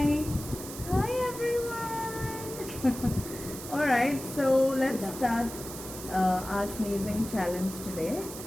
Hi everyone. Alright, so let's start our sneezing challenge today.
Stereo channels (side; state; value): right; noise; hiss, 11 dB below the sound